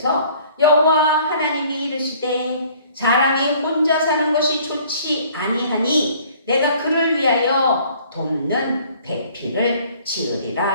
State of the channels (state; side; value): inverted; both; correlation -0.55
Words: 여호와 하나님이 이르시되 사람이 혼자 사는 것이 좋지 아니하니 내가 그를 위하여 돕는 배필을